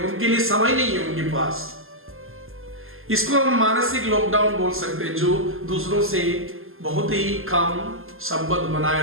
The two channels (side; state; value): left; late; 0.60 ms